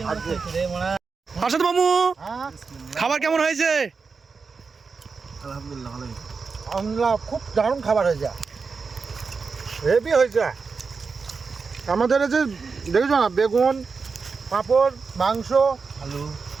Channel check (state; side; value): quieter; left; 4.9 dB